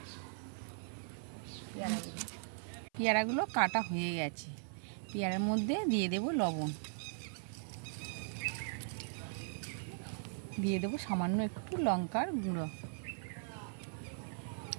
পেয়ারাগুলো। পেয়ারাগুলো কাটা হয়ে গেছে, পেয়ারার মধ্যে দিয়ে দেব লবণ, দিয়ে দেবো সামান্য একটু লঙ্কার গুঁড়ো,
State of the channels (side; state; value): left; silent; 52 dB below the other